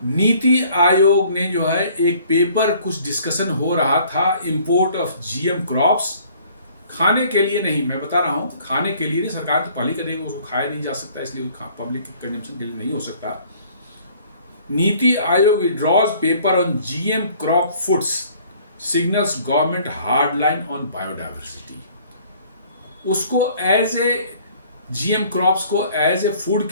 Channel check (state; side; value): inverted; both; correlation -0.56